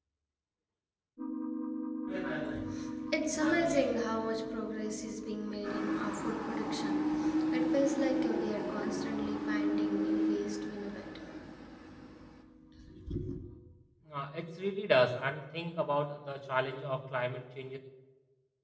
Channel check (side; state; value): both; identical; correlation 1.00